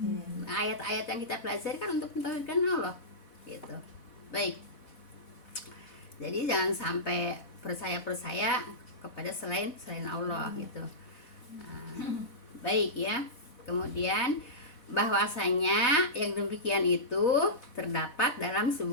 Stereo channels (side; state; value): right; late; 4.0 ms